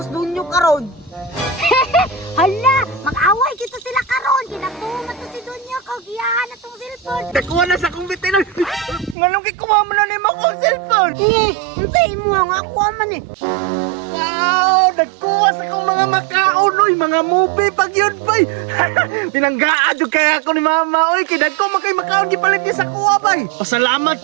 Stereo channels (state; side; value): drops out; left; at 9.2 s